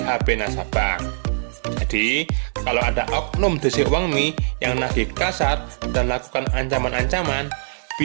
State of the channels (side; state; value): left; silent; digital silence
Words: nasabah. Jadi, kalau ada oknum DC UangMe yang nagih kasar dan lakukan ancaman-ancaman,